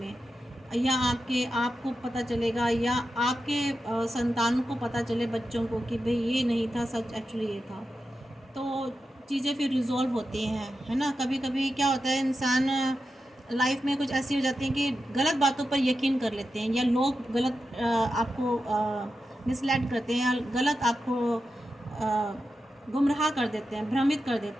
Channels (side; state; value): both; normal; correlation 0.90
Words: या आपको पता चलेगा, या आपके संतान को पता चले, बच्चों को, कि भाई ये नहीं था सच, एक्चुअली ये था। तो चीज़ें फिर रिजॉल्व होती हैं, है ना। कभी कभी क्या होता है, इंसान लाइफ में कुछ ऐसी हो जाती हैं कि गलत बातों पर यकीन कर लेते हैं, या लोग गलत आपको मिसलेड करते हैं, या गलत आपको गुमराह कर देते हैं, भ्रमित कर